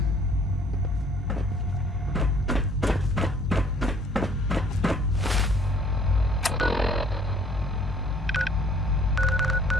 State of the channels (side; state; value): both; normal; correlation 0.59